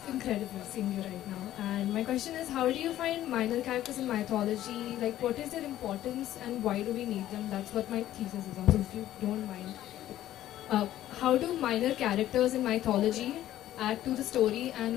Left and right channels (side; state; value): right; quieter; 13.2 dB